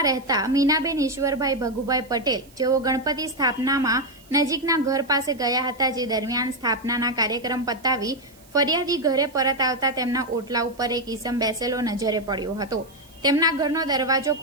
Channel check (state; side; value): noise; right; hiss, 27 dB below the sound